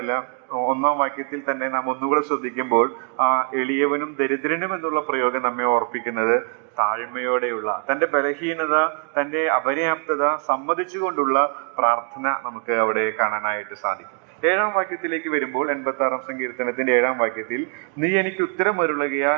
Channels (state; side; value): quieter; left; 39.0 dB